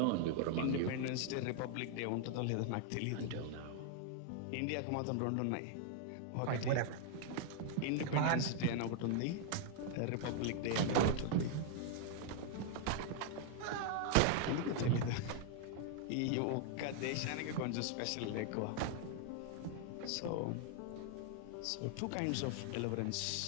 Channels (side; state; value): both; different; correlation 0.00